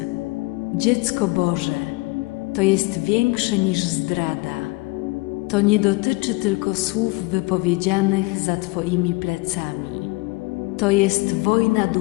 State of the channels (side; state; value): right; quieter; 24.9 dB